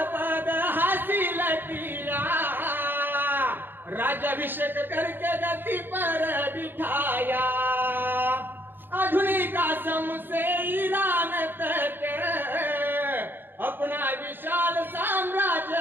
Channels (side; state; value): left; late; 0.097 ms